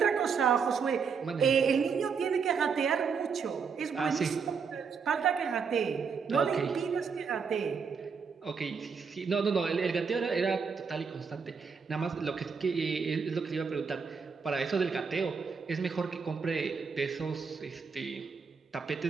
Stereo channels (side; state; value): left; quieter; 5.8 dB